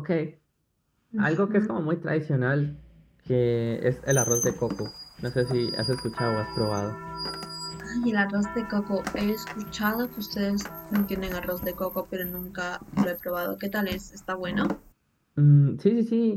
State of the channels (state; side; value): identical; both; correlation 1.00